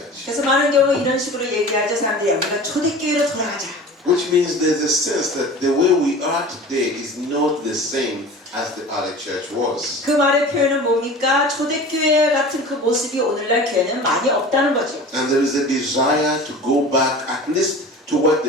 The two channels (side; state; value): both; normal; correlation 0.38